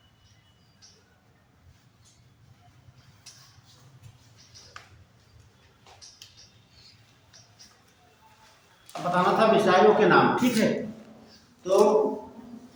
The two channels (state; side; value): identical; both; correlation 1.00